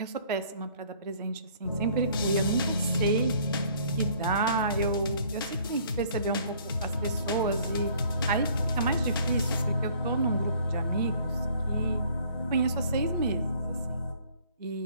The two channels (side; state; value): both; inverted; correlation -0.58